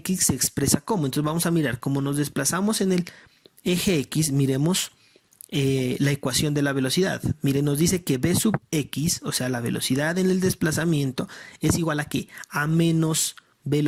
se expresa como. Entonces vamos a mirar cómo nos desplazamos en el eje X. Miremos la ecuación de la velocidad. Miren, nos dice que V sub X, o sea, la velocidad en el desplazamiento, es igual a ¿qué? A menos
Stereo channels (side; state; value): both; identical; correlation 1.00